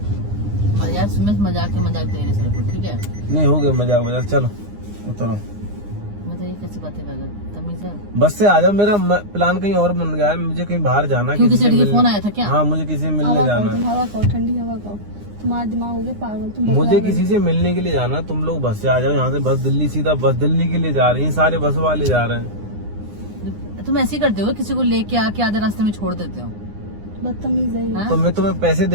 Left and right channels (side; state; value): left; late; 9.8 ms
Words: यार सुमेश मजाक के मजाक दे रहे सिर्फ, ठीक है? नहीं हो गया मजाक वजाक, चलो उतरो। बताइए कैसी बातें कर रहे हैं, तमीज है? बस से आ जाओ, मेरा प्लान कहीं और बन गया है, मुझे कहीं बाहर जाना है, क्यों किसी किसी से लड़की का मिलने- फोन आया था क्या? हाँ, मुझे किसी से मिलने हवा जाना खाओ, है। तुम हवा खाओ, ठंडी हवा खाओ, तुम्हारा दिमाग हो गया पागल, तुम बकरा मुझे बन किसी से मिलने के लिए जाना है, तुम लोग बस से आ जाओ यहाँ से, बस दिल्ली सीधा, बस दिल्ली के लिए जा रही है, सारे बस वाले जा रहे हैं। तुम ऐसे ही करते हो, किसी को लेके आके आधे रास्ते में छोड़ देते हो? बदतमीज है ये। हाँ? तो मैं तुम्हें पैसे